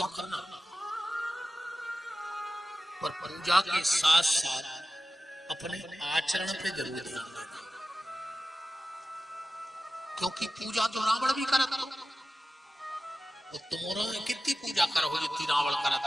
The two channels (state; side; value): normal; both; correlation 0.94